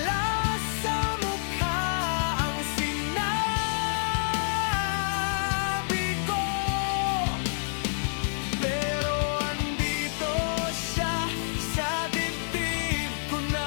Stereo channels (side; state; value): right; silent; digital silence